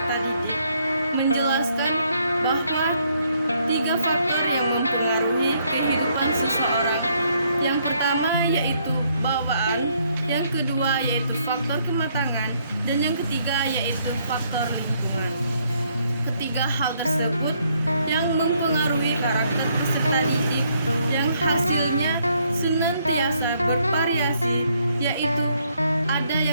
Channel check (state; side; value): inverted; both; correlation -0.70